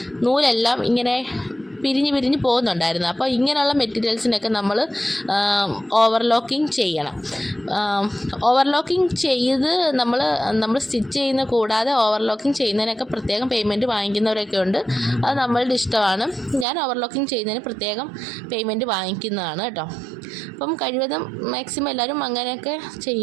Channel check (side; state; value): left; drops out; at 16.7 s